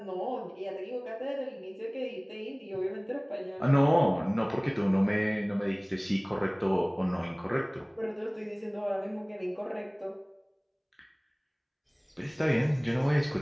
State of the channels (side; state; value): both; identical; correlation 1.00